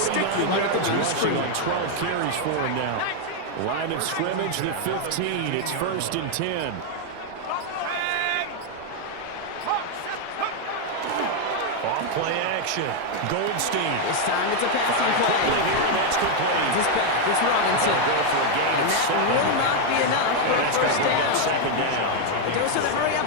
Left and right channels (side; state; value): both; different; correlation 0.01